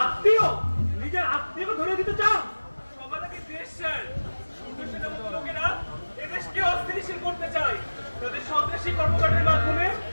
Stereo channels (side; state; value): both; inverted; correlation -1.00